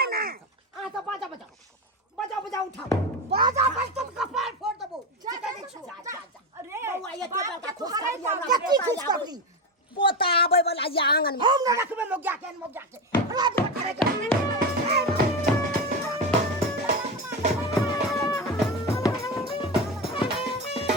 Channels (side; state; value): both; normal; correlation 0.18